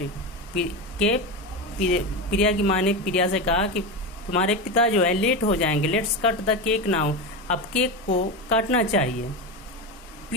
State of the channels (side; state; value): both; normal; correlation 0.18